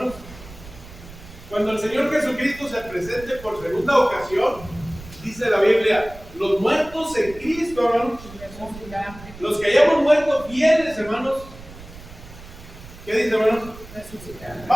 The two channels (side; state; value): right; noise; rumble, 17 dB below the sound